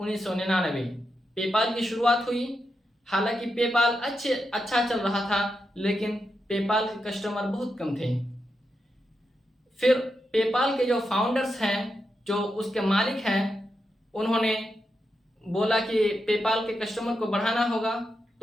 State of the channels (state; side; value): normal; both; correlation 0.86